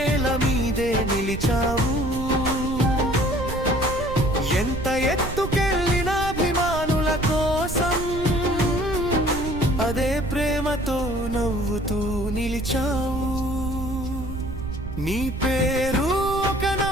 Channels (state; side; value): noise; right; rumble, 7 dB below the sound